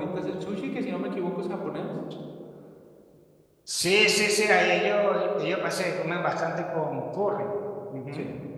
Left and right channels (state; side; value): identical; both; correlation 1.00